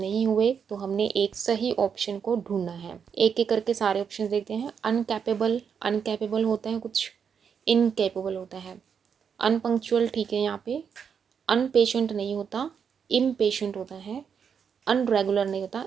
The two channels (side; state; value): left; quieter; 7.0 dB